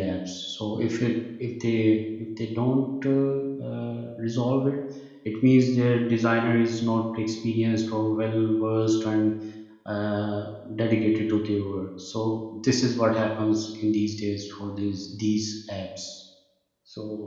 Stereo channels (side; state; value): both; identical; correlation 1.00